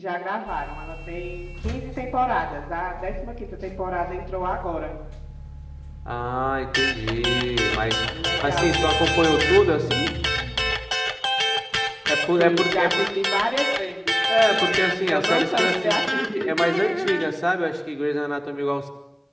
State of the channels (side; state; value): both; identical; correlation 1.00